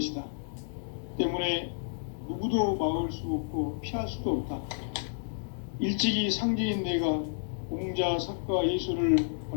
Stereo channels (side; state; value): right; silent; digital silence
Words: 때문에 누구도 막을 수 없고 피할 수도 없다. 일찍이 상제인 내가 공자, 석가, 예수를